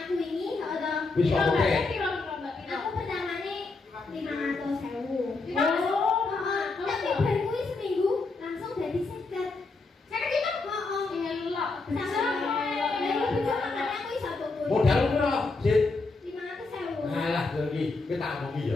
aku wingi ora. Wis kok oke. Aku pertamane 500.000. Oh, tapi baru kuwi seminggu langsung dadi 50. 50 juta? Heeh. Elok. Modal piro, Sit? 500.000. Alah, lho iki kita omongi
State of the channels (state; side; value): quieter; right; 3.7 dB